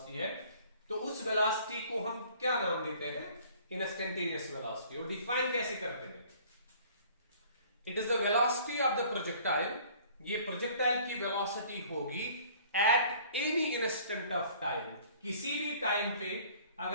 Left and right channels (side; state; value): both; inverted; correlation -0.53